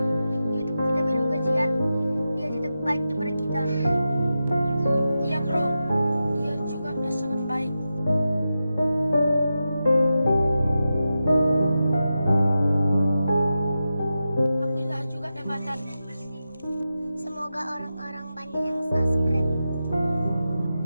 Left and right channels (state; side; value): inverted; both; correlation -0.90